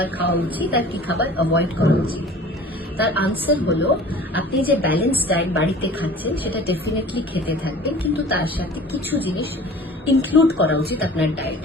খাওয়া উচিত আর কি খাবার অ্যাভয়েড করা উচিত? তার আনসার হলো, আপনি যে ব্যালেন্স ডায়েট বাড়িতে খাচ্ছেন সেটা ডেফিনেটলি খেতে থাকবেন, কিন্তু তার সাথে কিছু জিনিস ইনক্লুড করা উচিত আপনার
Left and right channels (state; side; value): normal; both; correlation 0.44